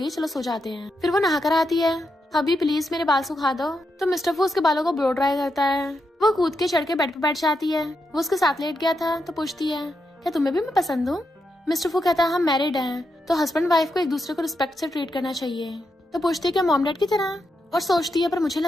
चलो सो जाते हैं। फिर वो नहा कर आती है हबी प्लीज मेरे बाल सुखा दो। तो मिस्टर फू उसके बालों को ब्लो ड्राई करता है। वो कूद के चढ़ के बेड पे बैठ जाती है। वो उसके साथ लेट गया था। तो पूछती है क्या तुम्हें भी मैं पसंद हूँ। मिस्टर फू कहता है हम मैरिड हैं, तो हस्बैंड वाइफ को एक दूसरे को रिस्पेक्ट से ट्रीट करना चाहिए। तो पूछती है क्या मॉम डैड की तरह, और सोचती है पर मुझे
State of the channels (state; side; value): normal; both; correlation 0.84